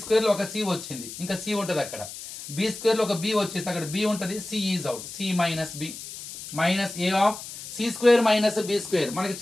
స్క్వేర్ లో ఒక c వచ్చింది, ఇంకా c ఉంటుంది అక్కడ. b స్క్వేర్ లో ఒక b వచ్చేసింది, అక్కడ b ఉంటుంది, c is out. c minus b minus a of c square minus b square. మనకి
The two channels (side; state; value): left; noise; hiss, 11 dB below the sound